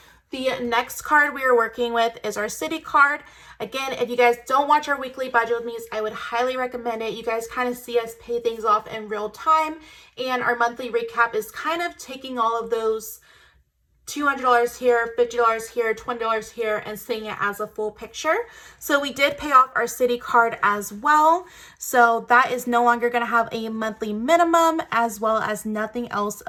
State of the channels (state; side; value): identical; both; correlation 1.00